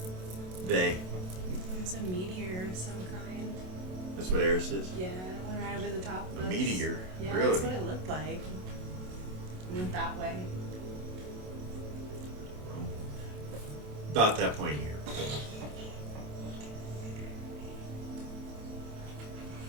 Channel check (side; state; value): left; late; 27 ms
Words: Vay. It's a meteor of some kind. That's what Eris is? Yeah, it went right over the top of A us. meteor? Yeah, Really? that's what it looked like. It went that way. About that point here.